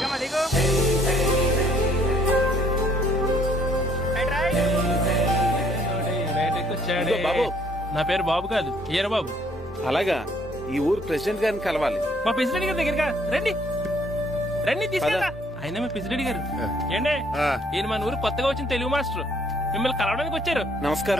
బాబు, నా పేరు బాబు కాదు, ఈర బాబు. అలాగా, ఈ ఊరు ప్రెసిడెంట్ గారిని కలవాలి. మా ప్రెసిడెంట్ గారి దగ్గరగా రండి. రండి తీసుకెళ్ళా. ఆయన మా ప్రెసిడెంట్ గారు. ఏండే, ఈయన మన ఊరు కొత్తగా వచ్చిన తెలుగు మాస్టర్, మిమ్మల్ని కలవడానికి వచ్చారు.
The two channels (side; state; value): both; normal; correlation 0.63